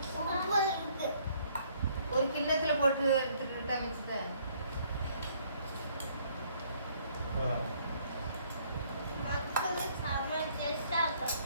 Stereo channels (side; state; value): both; inverted; correlation -0.64